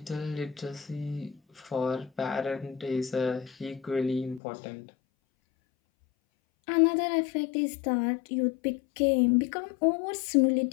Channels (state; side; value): drops out; right; at 4.4 s